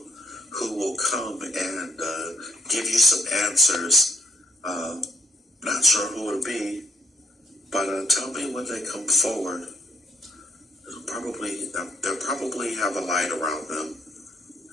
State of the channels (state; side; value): normal; both; correlation 0.71